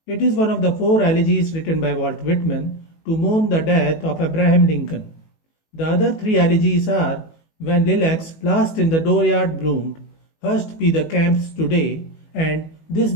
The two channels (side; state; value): right; late; 18 ms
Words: It is one of the four elegies written by Walt Whitman to mourn the death of Abraham Lincoln. The other three elegies are When Lilacs Last in the Dooryard Bloom'd, Hushed be the camps today, and This